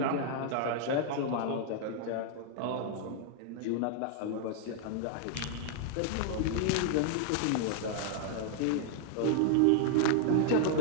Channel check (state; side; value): different; both; correlation -0.01